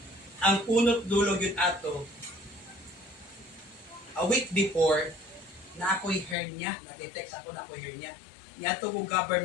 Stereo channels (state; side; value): drops out; right; at 6.4 s